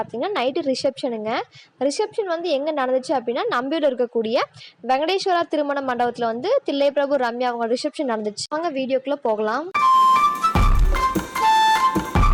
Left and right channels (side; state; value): both; identical; correlation 1.00